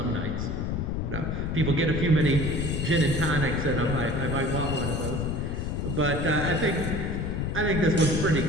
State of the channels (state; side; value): noise; left; rumble, 1 dB below the sound